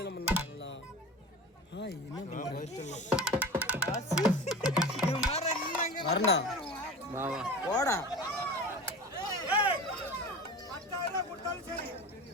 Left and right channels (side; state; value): both; normal; correlation 0.33